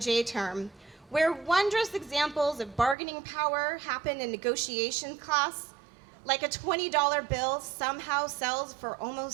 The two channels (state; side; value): drops out; left; at 3.0 s